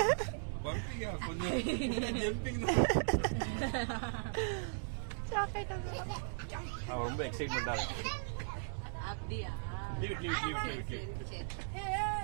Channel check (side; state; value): left; silent; digital silence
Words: பம்பியா கொஞ்சம் ஜம்பிங் தான். அவன் ரொம்ப எக்ஸைட்மெண்டா இருக்கான். அப்படியே லீவ்.